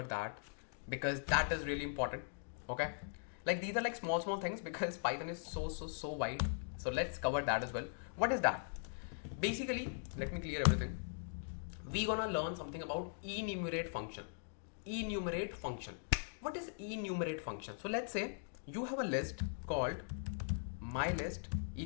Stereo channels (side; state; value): right; silent; digital silence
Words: that because that is really important. Okay. Like these are like small things because Python is so wide. So let's cover that as well. What is that? Basically, let me clear everything. We're gonna learn something about enumerate function. Enumerate function. What is enumerate function? So let's say you have a list called my list